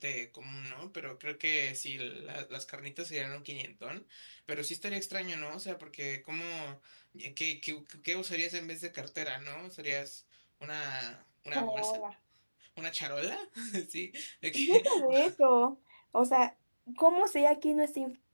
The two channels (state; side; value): inverted; both; correlation -1.00